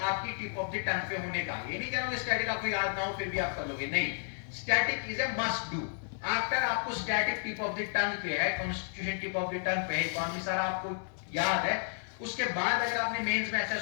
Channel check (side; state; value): right; silent; 56 dB below the other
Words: आपकी टिप ऑफ द टंग पे होने का। ये नहीं कह रहा हूं स्टैटिक आपको याद ना हो फिर भी आप कर लोगे, नहीं, static is a must do. After आपको static tip of the tongue पे है, constitution tip of the tongue पे है, इकोनॉमी सारा आपको याद है, उसके बाद अगर आपने मेंस में ऐसा